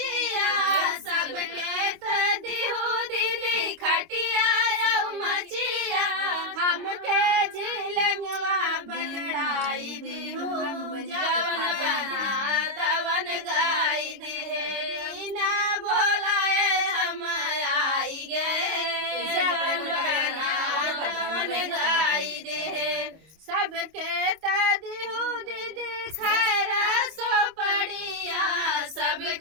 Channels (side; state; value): left; late; 25 ms